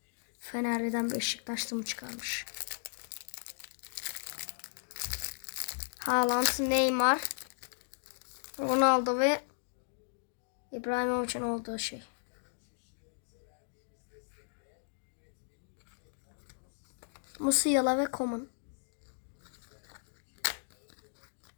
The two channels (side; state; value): right; silent; digital silence